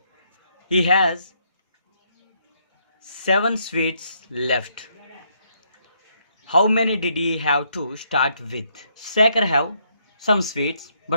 He has 7 sweets left. How many did he have to start with? Shekhar have some sweets,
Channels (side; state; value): both; inverted; correlation -0.73